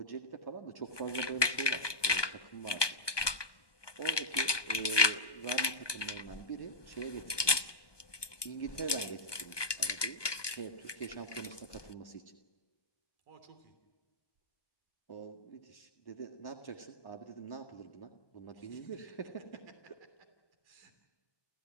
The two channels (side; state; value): right; late; 1.2 ms